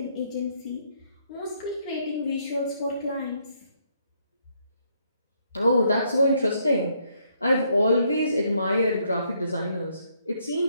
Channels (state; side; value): inverted; both; correlation -0.72